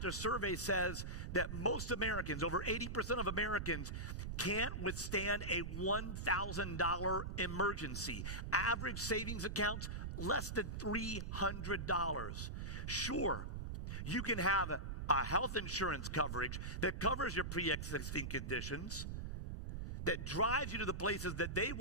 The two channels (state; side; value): noise; right; rumble, 5 dB below the sound